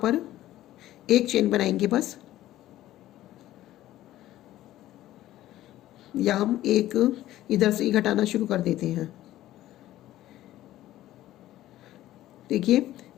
1 चेन बनाएंगे बस, या हम एक इधर से ही घटाना शुरू कर देते हैं। देखिए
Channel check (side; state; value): right; quieter; 14.4 dB